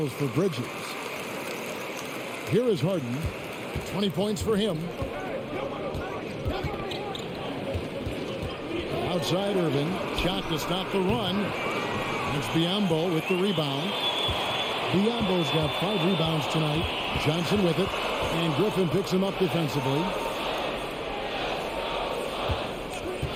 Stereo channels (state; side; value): identical; both; correlation 1.00